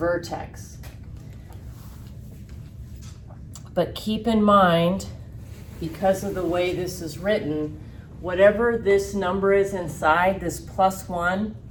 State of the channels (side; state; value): both; identical; correlation 1.00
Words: But keep in mind, because of the way this is written, whatever this number is inside, this +1,